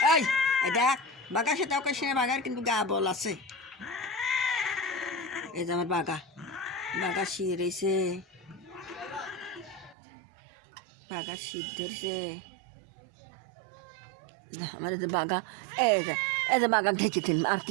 এই দেখ বাগা সেটা ওকে সে বাগার কিন্তু গা বল আছে। এই যে আমার বাগা বাগা শির এসে বাগা সিদ্ধেছে আমার যে বাগা এই যে বাগা ঘেঁচে দিন আর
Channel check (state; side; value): drops out; left; at 10.0 s